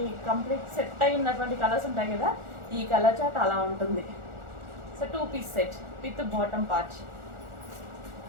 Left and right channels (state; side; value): late; left; 1.4 ms